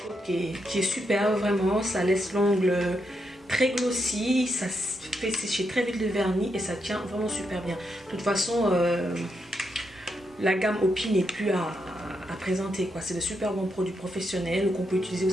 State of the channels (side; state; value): both; normal; correlation 0.81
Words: qui est super, vraiment. Ça laisse l'ongle très glossy, ça fait sécher très vite le vernis et ça tient vraiment super bien. De toute façon, la gamme Opi n'est plus à présenter, quoi. C'est de super bons produits professionnels qu'on peut utiliser